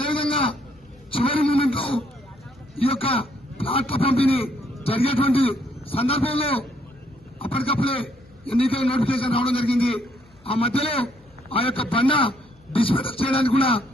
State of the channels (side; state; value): left; noise; hum, 30 dB below the sound